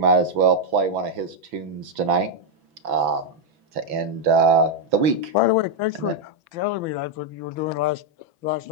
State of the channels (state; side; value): late; left; 6.1 ms